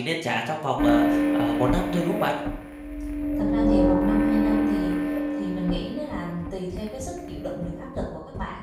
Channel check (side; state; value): both; identical; correlation 1.00